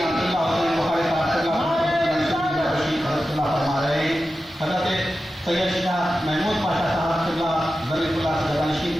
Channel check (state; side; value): normal; both; correlation 0.92